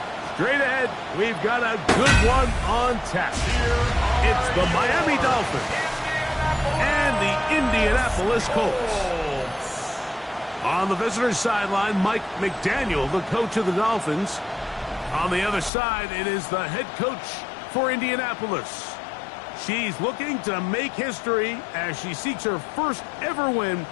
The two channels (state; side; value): drops out; right; at 15.7 s